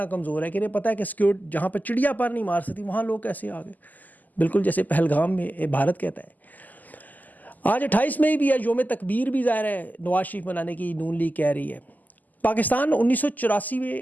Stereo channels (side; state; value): right; late; 0.082 ms